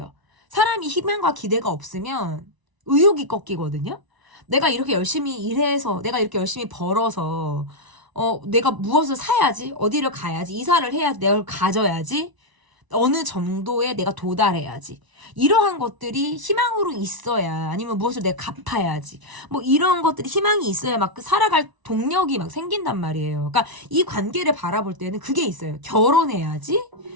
사람이 희망과 기대가 없으면 의욕이 꺾이거든요. 내가 이렇게 열심히 일해서 내가 이렇게 열심히 벌어서 내가 무엇을 사야지 어디를 가야지 이사를 해야지 내가 가져야지 어느 정도에 내가 도달해야지. 이러한 것들이 희망으로 있어야, 아니면 무엇을 내가 갚아야지. 뭐 이런 것들이 희망이 있어야 막 살아갈 동력이 막 생긴단 말이에요. 그러니까 이 관계를 바라볼 때는 그게 있어요. 결혼해야지.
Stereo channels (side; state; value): left; late; 1.0 ms